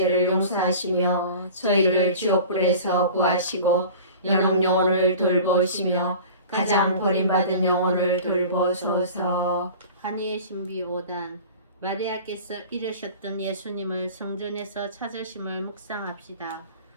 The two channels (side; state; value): both; inverted; correlation -0.40